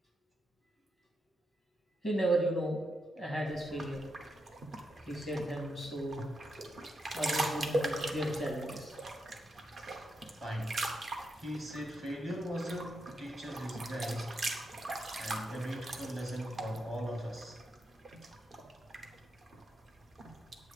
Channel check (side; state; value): both; normal; correlation 0.83